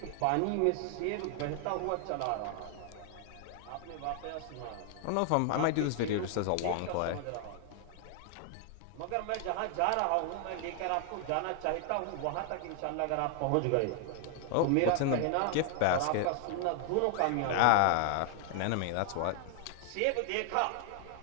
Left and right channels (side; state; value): both; different; correlation 0.00